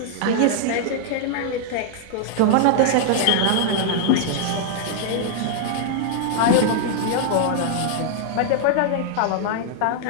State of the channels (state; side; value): different; both; correlation -0.01